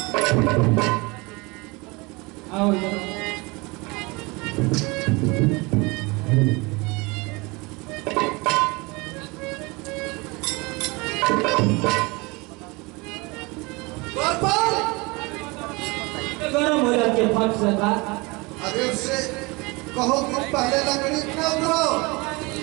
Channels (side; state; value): left; quieter; 25.8 dB